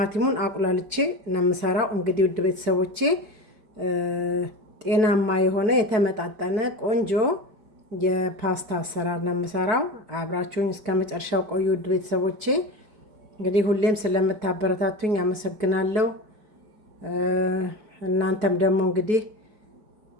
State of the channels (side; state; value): left; late; 4.6 ms